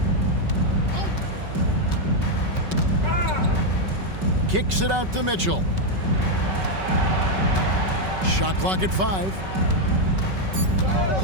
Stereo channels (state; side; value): late; left; 5.3 ms